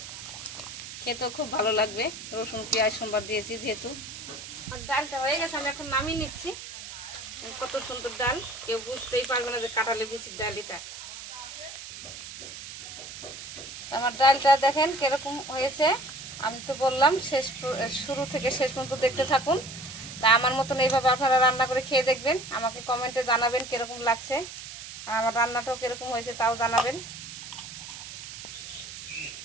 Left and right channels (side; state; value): right; noise; hiss, 11 dB below the sound